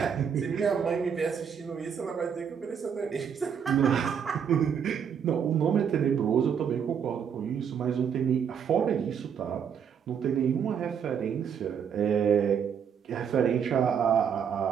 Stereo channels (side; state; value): left; quieter; 7.6 dB